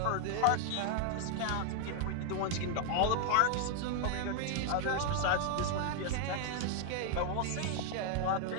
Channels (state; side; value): different; both; correlation 0.00